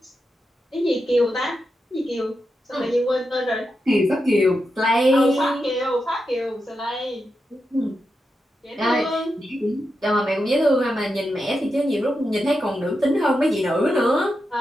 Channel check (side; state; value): both; normal; correlation 0.88